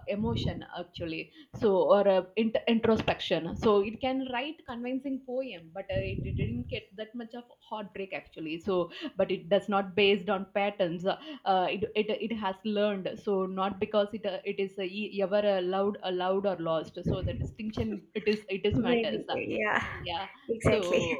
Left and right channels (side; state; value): both; identical; correlation 1.00